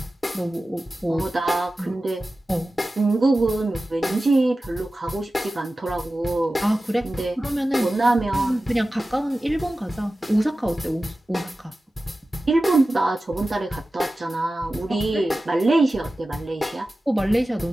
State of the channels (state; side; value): normal; both; correlation 0.95